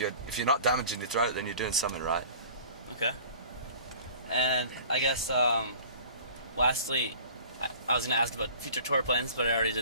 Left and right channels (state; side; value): inverted; both; correlation -0.45